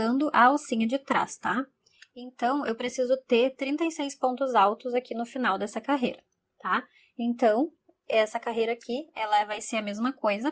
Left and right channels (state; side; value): identical; both; correlation 1.00